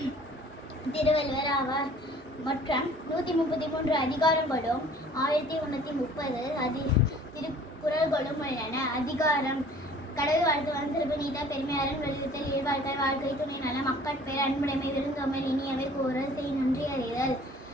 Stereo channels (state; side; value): normal; both; correlation 0.51